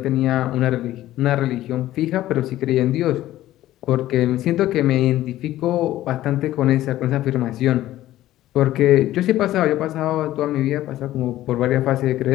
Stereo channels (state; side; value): quieter; right; 14.5 dB